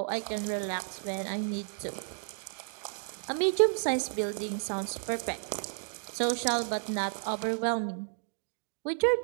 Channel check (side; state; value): left; silent; digital silence